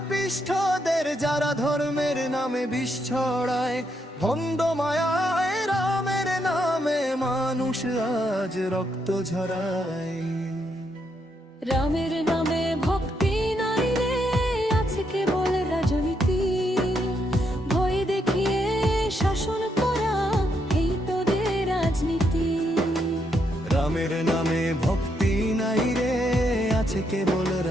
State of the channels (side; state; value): both; normal; correlation 0.78